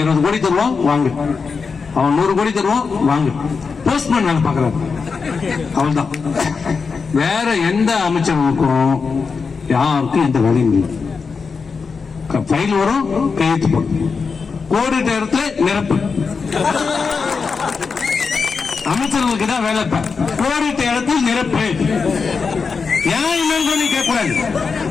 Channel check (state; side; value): quieter; right; 5.1 dB